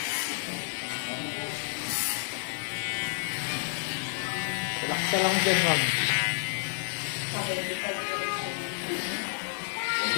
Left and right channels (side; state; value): right; silent; 58 dB below the other